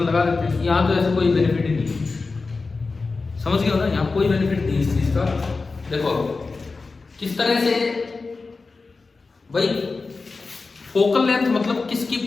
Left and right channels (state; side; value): quieter; right; 4.0 dB